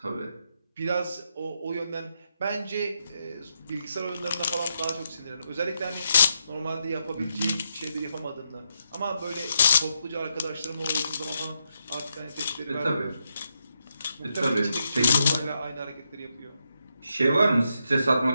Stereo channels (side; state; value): both; inverted; correlation -0.81